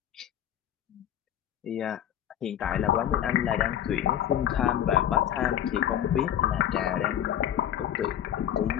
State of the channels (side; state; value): right; quieter; 10.7 dB